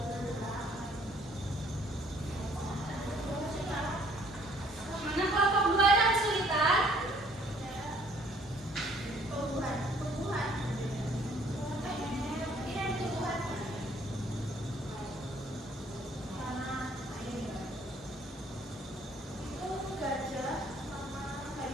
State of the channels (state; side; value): normal; both; correlation 0.60